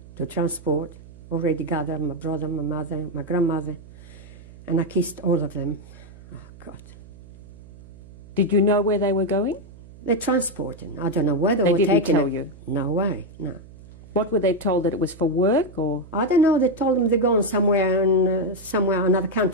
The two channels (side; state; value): right; noise; hum, 20 dB below the sound